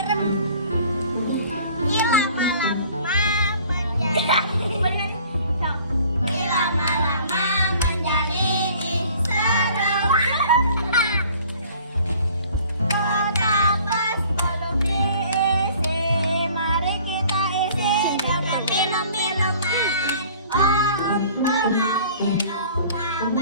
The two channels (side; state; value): both; inverted; correlation -0.51